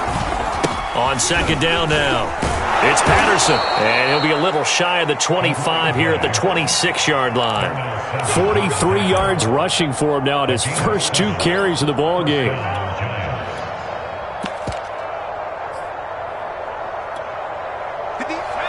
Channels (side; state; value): both; identical; correlation 1.00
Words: On 2nd down now, it's Patterson, and he'll be a little shy of the 25 here at the 26-yard line. 43 yards rushing for him now at his first 2 carries of the ball game.